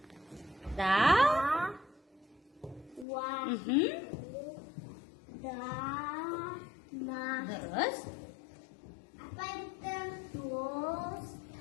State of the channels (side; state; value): right; drops out; at 3.1 s